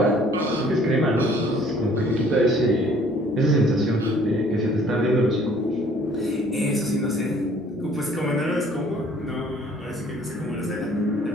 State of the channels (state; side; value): normal; both; correlation 0.57